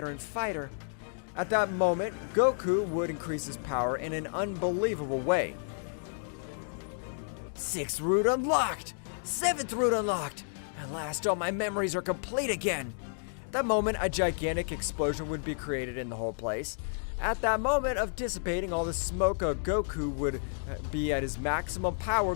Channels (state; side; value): silent; right; digital silence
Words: fighter. At that moment, Goku would increase his power in an unbelievable way. 6th root unlocked! 7th root unlocked! At last, all my memories are complete again! At that moment, a gigantic explosion would be created in the whole place. At that moment of dissipating all the smoke, Goku would be at his maximum power,